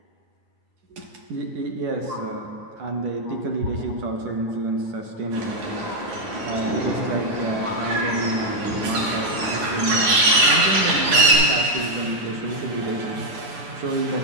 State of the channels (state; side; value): late; left; 9.6 ms